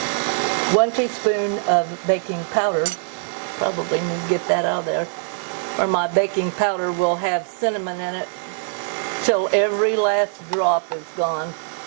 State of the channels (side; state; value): left; silent; digital silence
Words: 1 teaspoon of baking powder. Probably need to get that out of there. Or my baking powder will have cinnamon in it till every last drop is gone.